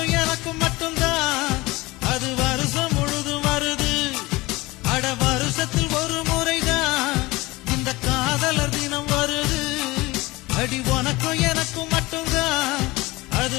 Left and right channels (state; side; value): quieter; right; 21.3 dB